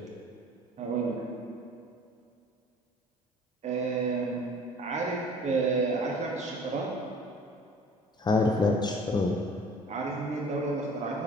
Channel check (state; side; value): normal; both; correlation 0.48